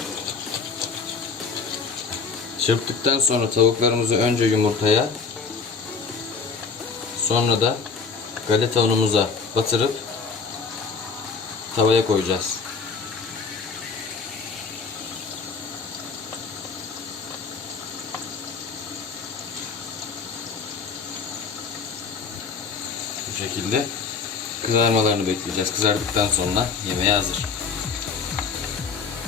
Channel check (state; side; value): quieter; right; 5.1 dB